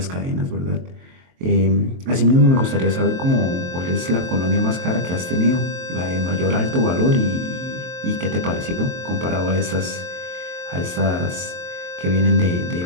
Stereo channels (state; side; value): late; left; 23 ms